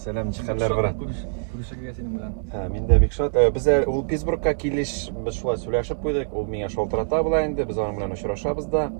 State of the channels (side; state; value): left; silent; digital silence